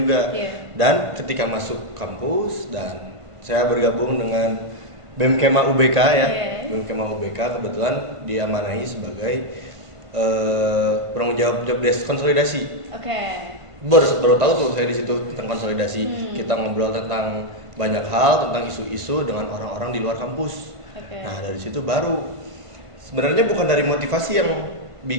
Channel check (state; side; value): late; left; 1.5 ms